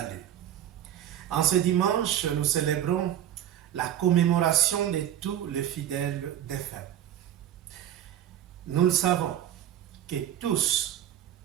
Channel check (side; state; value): left; quieter; 11.1 dB